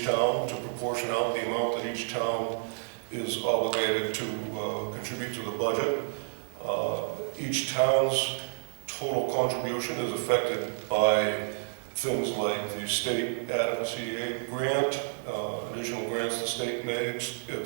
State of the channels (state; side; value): silent; left; 58 dB below the other